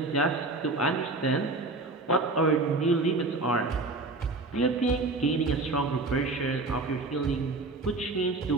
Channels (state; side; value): quieter; left; 3.3 dB